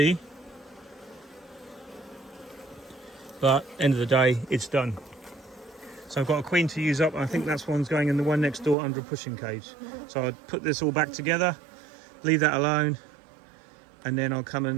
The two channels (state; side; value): drops out; left; at 8.8 s